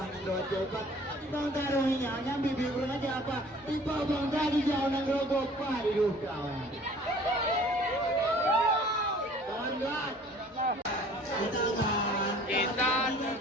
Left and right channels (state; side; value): normal; both; correlation 0.51